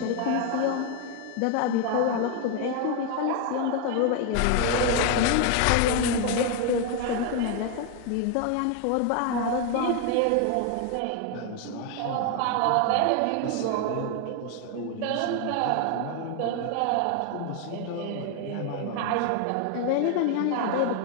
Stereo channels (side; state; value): both; different; correlation 0.01